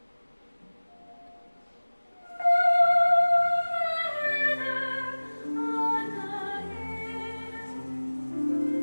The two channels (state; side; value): inverted; both; correlation -1.00